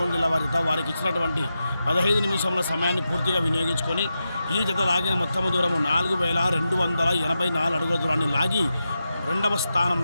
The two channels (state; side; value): inverted; both; correlation -0.89